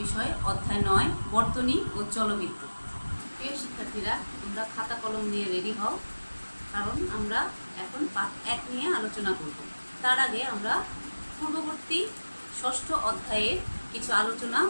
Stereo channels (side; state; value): both; inverted; correlation -1.00